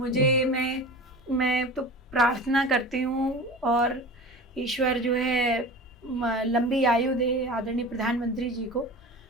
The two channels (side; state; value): both; normal; correlation 0.35